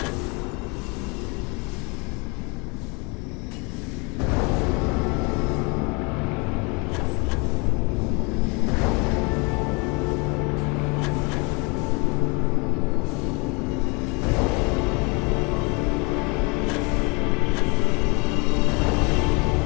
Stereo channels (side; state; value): right; quieter; 30.3 dB